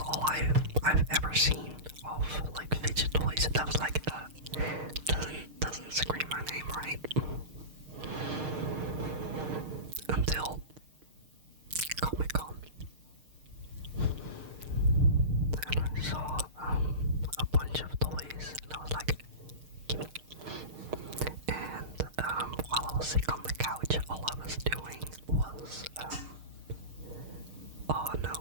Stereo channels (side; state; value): left; late; 6.5 ms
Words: all I've ever seen of like fidget toys. That was like doesn't scream my name right until Comic-Con, and I saw a bunch of toys, and I was like, gimme. And while I was sick on the couch, all I was doing was oh no,